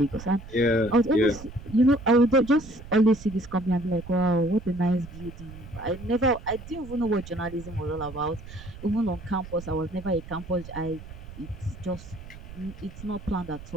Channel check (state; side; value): noise; right; rumble, 15 dB below the sound